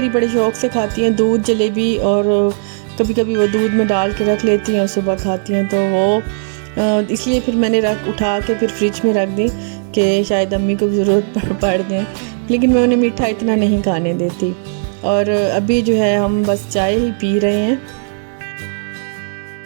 بڑے شوق سے کھاتی ہیں دودھ جلیبی، اور کبھی کبھی وہ دودھ میں ڈال کے رکھ لیتی ہیں اور صبح کھاتی ہیں. تو وہ اس لیے پھر میں نے اٹھا کے پھر فریج میں رکھ دی کہ شاید امی کو بھی ضرورت پڑ جائے. لیکن میں انہیں میٹھا اتنا نہیں کھانے دیتی. اور ابھی جو ہے ہم بس چائے ہی پی رہے ہیں،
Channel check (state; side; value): silent; left; 69 dB below the other